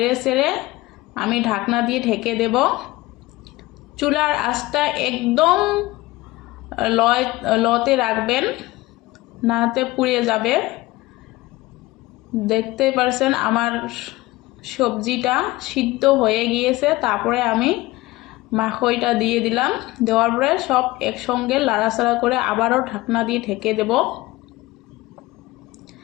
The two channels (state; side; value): quieter; right; 19.5 dB